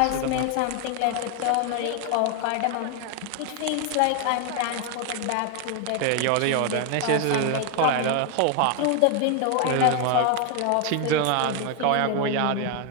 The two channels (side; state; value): both; different; correlation 0.00